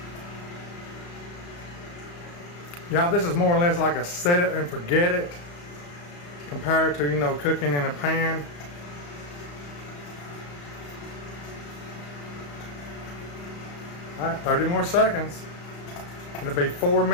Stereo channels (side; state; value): right; late; 35 ms